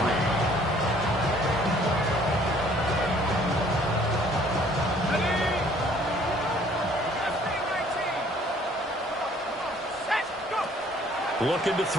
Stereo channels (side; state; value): both; normal; correlation 0.58